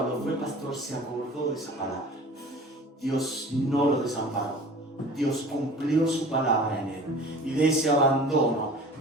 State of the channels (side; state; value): both; normal; correlation 0.43